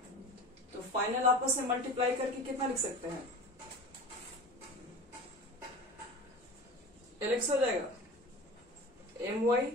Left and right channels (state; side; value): normal; both; correlation 0.34